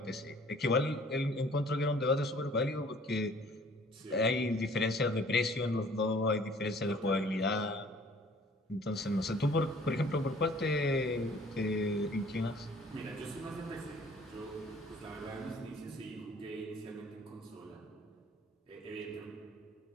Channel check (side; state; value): both; normal; correlation 0.54